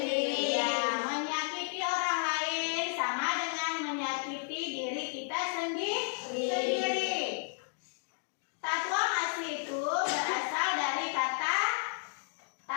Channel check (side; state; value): right; silent; digital silence